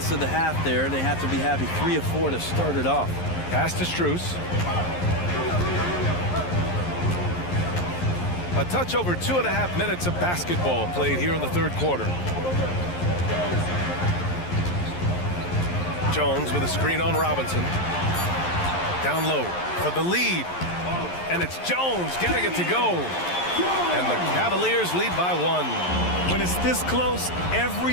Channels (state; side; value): late; right; 11 ms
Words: of the half there. They have to be happy. 3 of 4 to start it off. Pass to Strus. A touch over 2.5 minutes of basketball played here in the third quarter. Jones with a screen on Robinson. Down low for the lead. And it's Jones getting it to go. And the Cavaliers lead by 1. When it's this close,